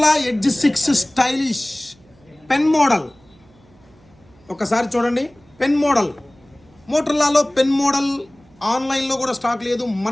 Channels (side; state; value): right; noise; hum, 30 dB below the sound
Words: edge 6 stylish pen model. ఒకసారి చూడండి, pen model. మోటరోలాలో pen model ఆన్లైన్లో కూడా స్టాక్ లేదు,